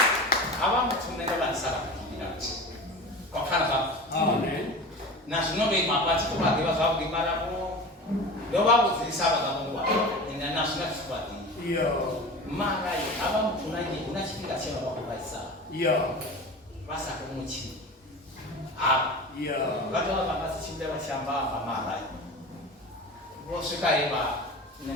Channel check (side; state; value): both; normal; correlation 0.32